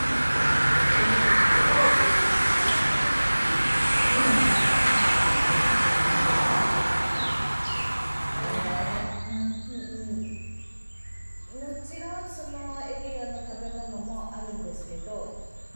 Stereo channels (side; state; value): both; inverted; correlation -1.00